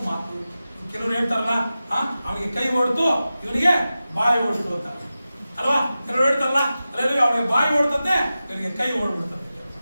ಮಾತು, ಕೆಲವರು ಹೇಳ್ತಾರಲ್ಲ, ಅವನಿಗೆ ಕೈ ಓಡ್ತು ಇವನಿಗೆ ಬಾಯಿ ಓಡ್ತು ಅಂತ ಅಲ್ವಾ? ಕೆಲವರು ಹೇಳ್ತಾರಲ್ಲ, ಅಲ್ಲೆಲ್ಲೂಯ್ಯ, ಅವನಿಗೆ ಬಾಯಿ ಓಡ್ತಂತೆ ಇವನಿಗೆ ಕೈ ಓಡ್ಬಿಡ್ತಂತೆ.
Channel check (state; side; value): inverted; both; correlation -0.94